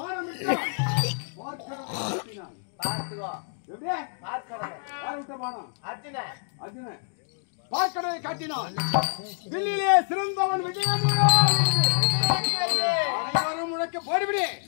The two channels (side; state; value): right; silent; digital silence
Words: விட்டான். பார்க்கடலை காட்டினான். வில்லிலே சிறந்தவன் விஜயன். அனைவரும் முழக்க போடுவிடு.